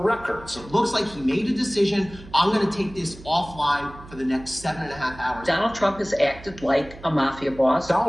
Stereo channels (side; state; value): right; noise; hum, 18 dB below the sound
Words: It looks like he made a decision. I'm going to take this offline for the next 7.5 hours. Donald Trump has acted like a mafia boss.